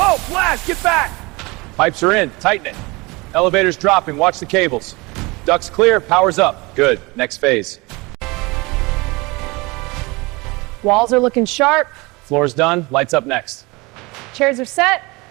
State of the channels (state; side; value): quieter; left; 24.8 dB